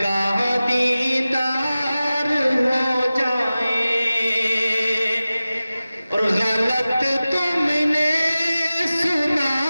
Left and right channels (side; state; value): both; inverted; correlation -0.96